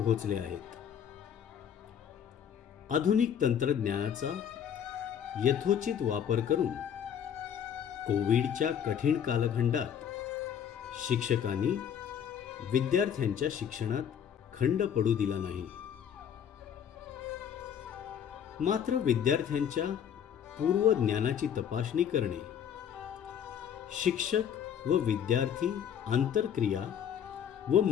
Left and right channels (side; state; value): right; quieter; 8.7 dB